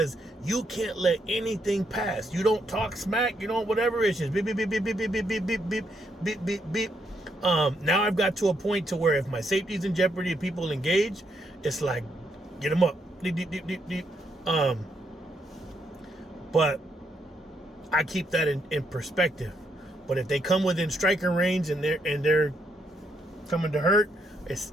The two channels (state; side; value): normal; both; correlation 0.76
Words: you can't let anything pass. You don't talk smack, you don't whatever. It's just beep beep beep beep beep beep beep beep beep beep beep beep. Now I've got to a point to where if my safety's in jeopardy and people engage, it's like, get them up, deep deep deep deep deep. But I keep that in perspective. But if they come within striking range and they're coming to hurt, it's,